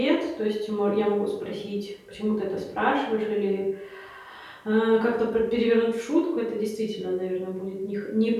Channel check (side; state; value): both; identical; correlation 1.00